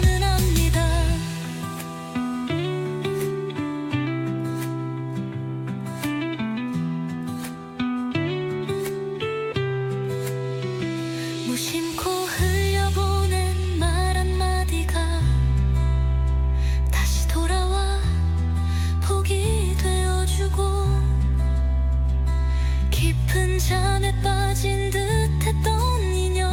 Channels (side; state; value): both; identical; correlation 1.00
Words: 압니다. 무심코 흘려보낸 말 한마디가 다시 돌아와 복이 되어주고 깊은 잠에 빠진 듯했던